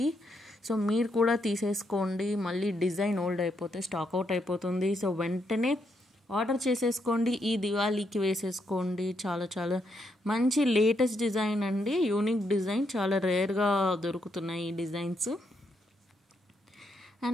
సో మీరు కూడా తీసేసుకోండి. మళ్ళీ డిజైన్ ఓల్డ్ అయిపోతే స్టాక్ అవుట్ అయిపోతుంది. సో వెంటనే ఆర్డర్ చేసేసుకోండి. ఈ దివాళీకి వేసేసుకోండి. చాలా చాలా మంచి లేటెస్ట్ డిజైన్ అండి. యూనిక్ డిజైన్, చాలా రేర్గా దొరుకుతున్నాయి ఈ డిజైన్స్.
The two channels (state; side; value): normal; both; correlation 0.78